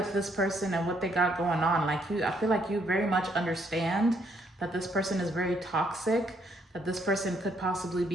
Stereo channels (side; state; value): both; normal; correlation 0.70